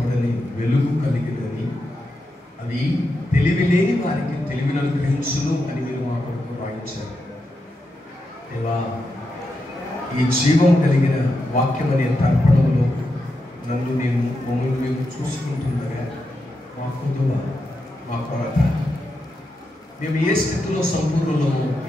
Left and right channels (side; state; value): both; normal; correlation 0.86